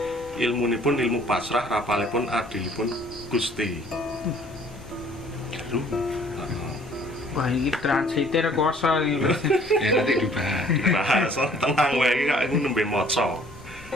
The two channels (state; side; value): normal; both; correlation 0.56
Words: ilmunipun ilmu pasrah, rapalipun adilipun Gusti. Wah, ini translator kuasa ini. ya nanti dibahas. Bahasa tenang wae iki kak nembe maca.